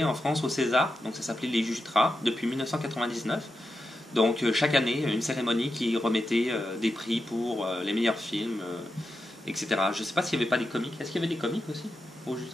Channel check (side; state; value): both; normal; correlation 0.88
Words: en France au César, donc ça s'appelait les Jutras depuis 1999. Donc chaque année, une cérémonie qui remettait des prix pour les meilleurs films, etc. Je ne sais pas s'il n'y avait pas des comiques. Est-ce qu'il y avait des comiques aussi au